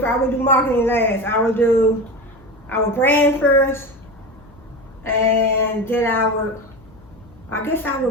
I would do marketing last. I would brand first, and then I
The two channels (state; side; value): noise; left; hum, 26 dB below the sound